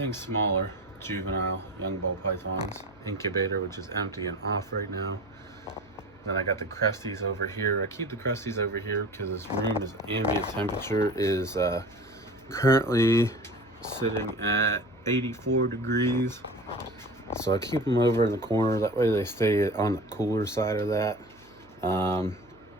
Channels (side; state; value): left; noise; hum, 27 dB below the sound